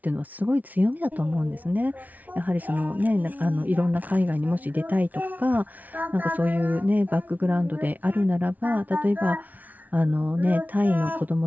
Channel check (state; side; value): late; left; 0.076 ms